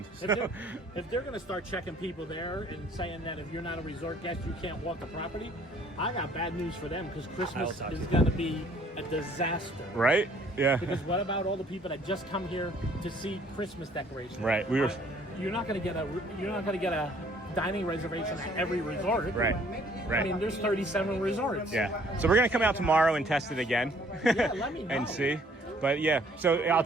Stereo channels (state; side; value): normal; both; correlation 0.59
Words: If they're going to start checking people there and saying that if you're not a resort guest, you can't walk the property, I got bad news for them because Christmas is going to be a disaster. Right? Yeah. Because what about all the people that just come here to see Christmas decorations? Right. You're not going to get a dining reservation at every resort. Right. I mean, there's 37 resorts. Yeah. So we're going to come out tomorrow and test it again. Yeah, let me know. And see. But yeah, so I'll